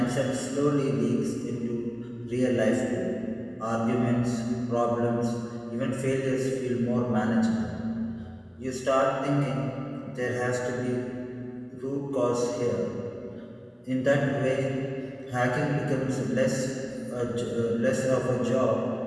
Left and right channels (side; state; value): both; identical; correlation 1.00